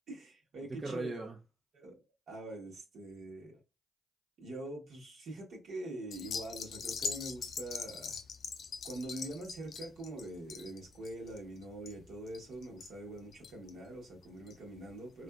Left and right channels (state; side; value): normal; both; correlation 0.71